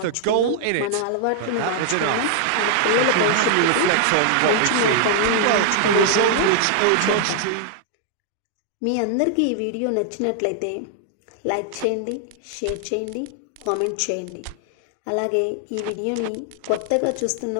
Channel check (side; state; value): both; different; correlation -0.01